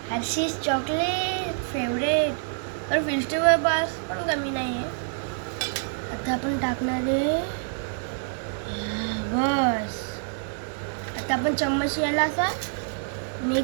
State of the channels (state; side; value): silent; left; digital silence